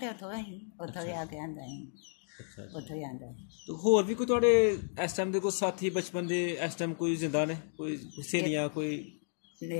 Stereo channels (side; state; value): right; silent; digital silence